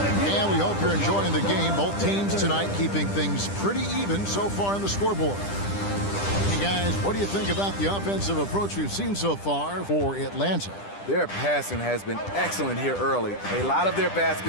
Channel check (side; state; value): right; late; 10 ms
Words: And we hope you're enjoying the game. Both teams tonight keeping things pretty even so far on the scoreboard. Hey guys, what do you think about the offensive approach we've seen so far for Atlanta? Their passing has been excellent here early. A lot of their